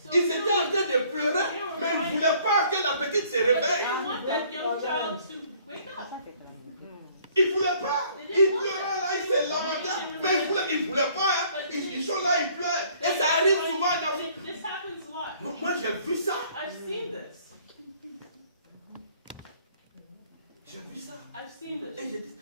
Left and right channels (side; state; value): both; inverted; correlation -0.59